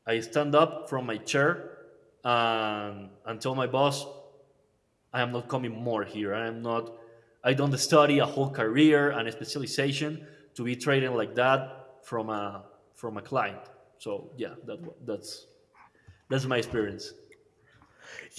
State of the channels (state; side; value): identical; both; correlation 1.00